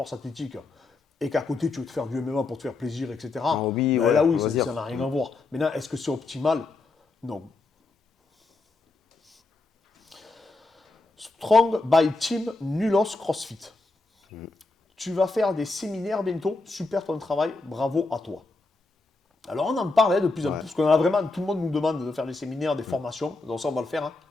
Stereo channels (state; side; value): quieter; right; 3.4 dB